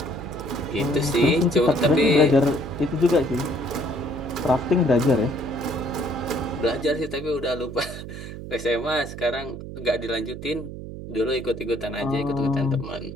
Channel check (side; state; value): right; noise; hum, 10 dB below the sound